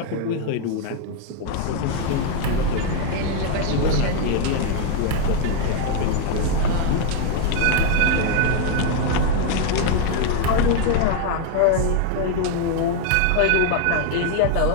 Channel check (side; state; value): both; different; correlation 0.00